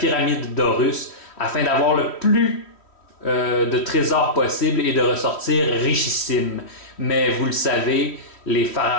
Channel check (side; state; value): right; late; 3.1 ms